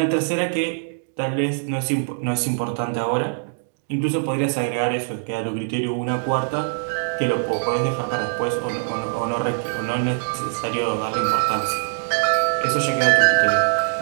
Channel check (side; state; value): left; silent; digital silence